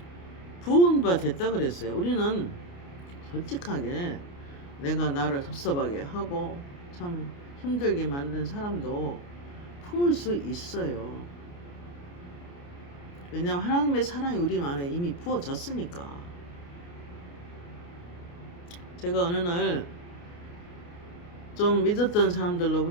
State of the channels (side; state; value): right; late; 29 ms